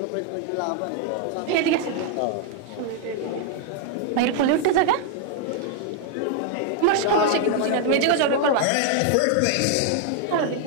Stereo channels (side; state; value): both; different; correlation 0.00